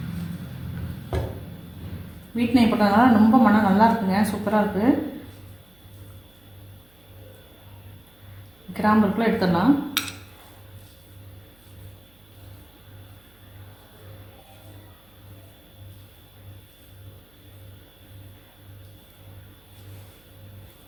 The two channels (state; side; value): noise; right; hum, 30 dB below the sound